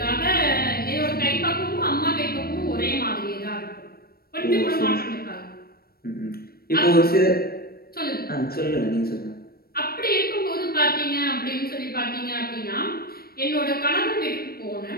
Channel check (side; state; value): right; late; 0.44 ms